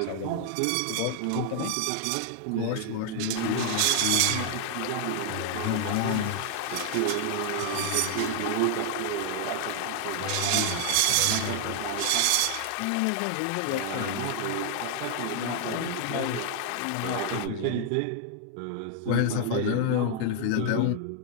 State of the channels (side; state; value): both; different; correlation 0.00